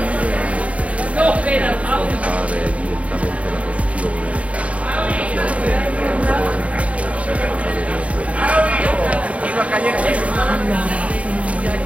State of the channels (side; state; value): left; late; 0.066 ms